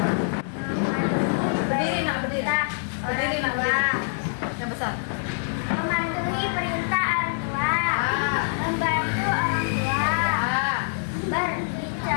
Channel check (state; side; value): silent; right; digital silence